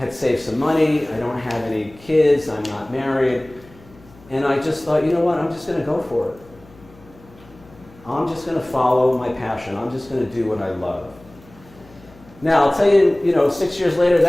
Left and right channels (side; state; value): left; noise; hum, 24 dB below the sound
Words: saved some money, I don't have any kids, I'm not married. And I just thought, you know what, I'm just going to go for it. I'm just going to follow my passion. I'm just going to do what I love. Now, I'll tell you, you know, 6 years later,